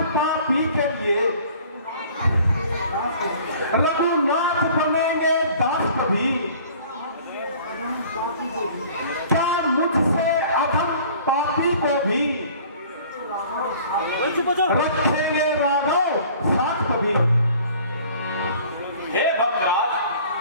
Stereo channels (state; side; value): inverted; both; correlation -0.50